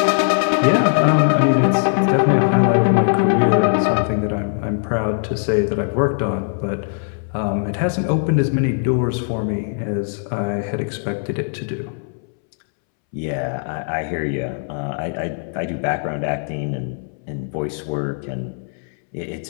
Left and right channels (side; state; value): right; silent; 66 dB below the other